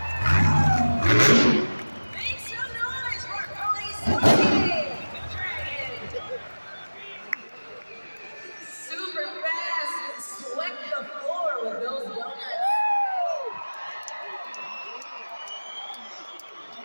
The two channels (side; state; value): both; inverted; correlation -1.00